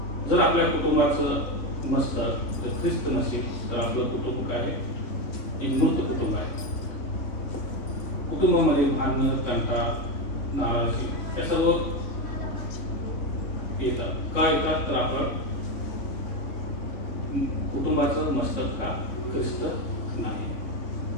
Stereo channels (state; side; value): late; right; 3.3 ms